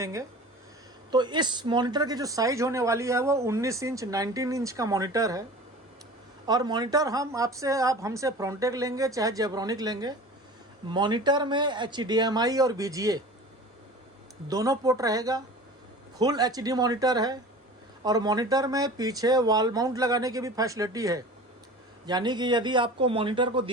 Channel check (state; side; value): normal; both; correlation 0.38